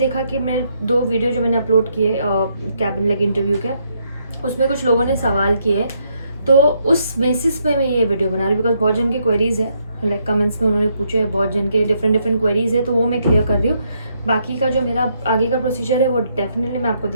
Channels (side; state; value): both; inverted; correlation -0.75